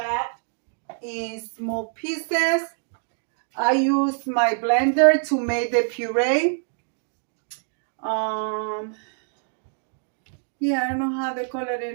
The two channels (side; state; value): left; silent; digital silence